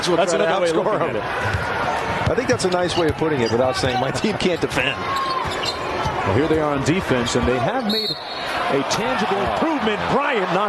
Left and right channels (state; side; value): identical; both; correlation 1.00